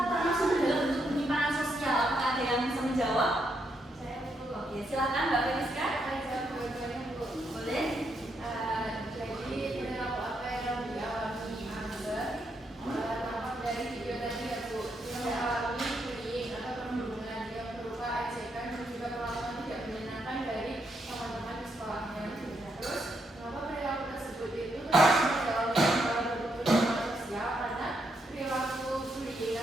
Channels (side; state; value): both; normal; correlation 0.79